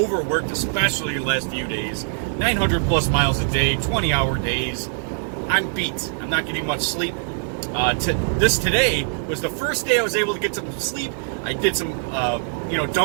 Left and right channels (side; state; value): left; silent; digital silence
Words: especially the last few days. 900 plus miles a day, 20-hour days. I'm beat. I'm not getting much sleep. Today was the first day I was able to get some sleep. I did some,